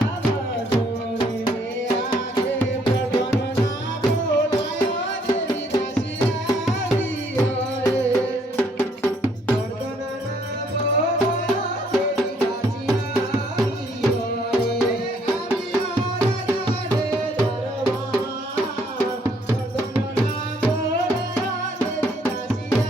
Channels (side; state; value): both; normal; correlation 0.66